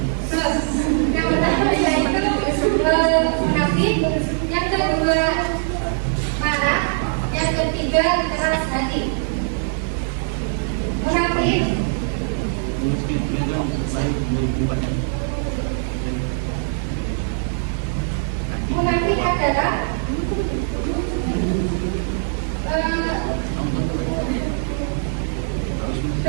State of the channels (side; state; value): left; silent; digital silence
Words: Yang pertama yaitu munafik, yang kedua marah, yang ketiga keras hati. Munafik adalah